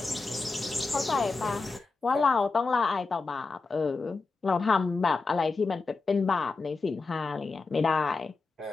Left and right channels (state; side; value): quieter; right; 4.0 dB